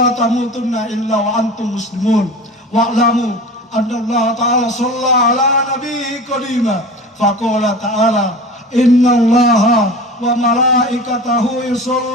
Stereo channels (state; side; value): normal; both; correlation 0.35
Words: tamutunna illa wa antum muslimun. Wa'lamu anna Allah ta'ala shalla ala nabiyhi qadima faqala ta'ala inna allaha wa malaikatahu